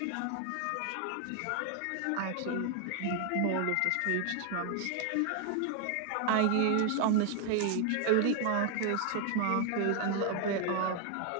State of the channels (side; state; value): both; different; correlation 0.00